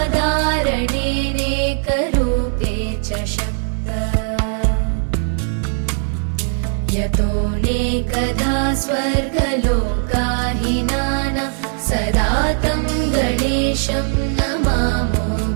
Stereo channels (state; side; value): silent; left; 56 dB below the other